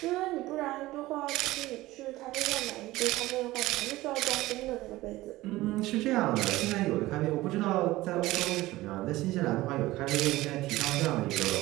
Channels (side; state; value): left; quieter; 17.8 dB